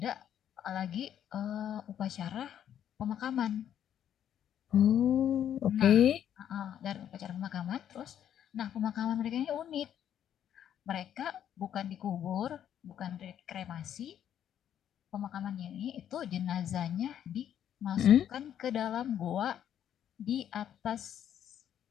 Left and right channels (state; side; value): quieter; right; 10.0 dB